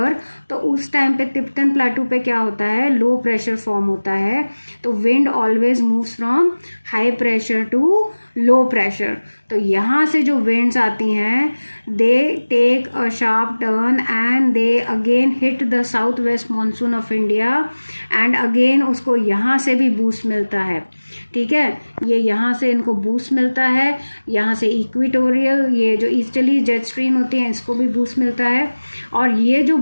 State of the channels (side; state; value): both; inverted; correlation -1.00